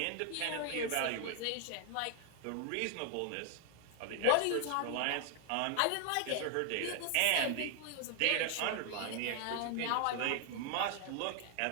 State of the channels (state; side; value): different; both; correlation 0.00